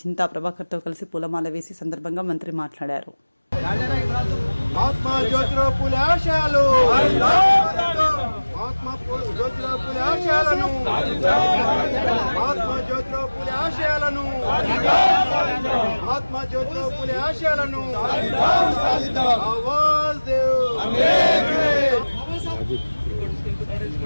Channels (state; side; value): inverted; both; correlation -1.00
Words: చింతా ప్రభాకర్తో కలిసి పూలమాల వేసి సందర్భంగా మంత్రి మాట్లాడారు. మహాత్మా జ్యోతిరావు పూలే ఆశయాలు, మహాత్మా జ్యోతిరావు పూలే ఆశయాలను, మహాత్మా జ్యోతిరావు పూలే ఆశయాలను, మహాత్మా జ్యోతిరావు పూలే ఆశయాలను ఆవాజ్ దేవ్.